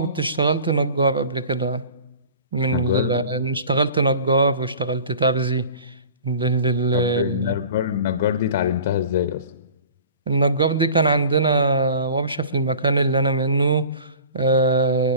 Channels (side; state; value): both; inverted; correlation -0.42